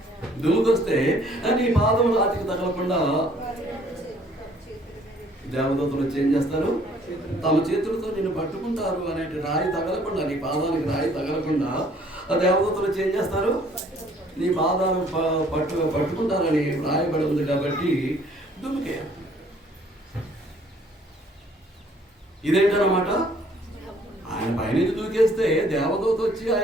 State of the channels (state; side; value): normal; both; correlation 0.59